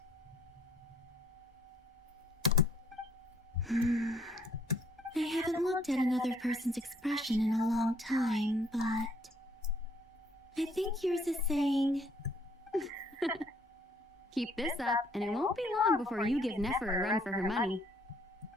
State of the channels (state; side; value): normal; both; correlation 0.64